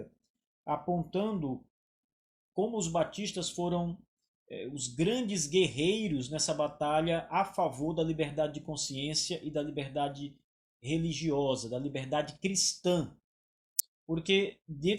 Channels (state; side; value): identical; both; correlation 1.00